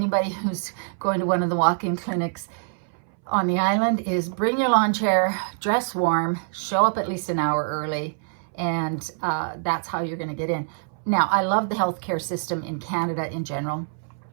who's going to one of the walk-in clinics on the island is bring your lawn chair, dress warm, show up at least an hour early, and that's how you're going to get in. Now, I love the healthcare system in Canada in general.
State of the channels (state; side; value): silent; left; 60 dB below the other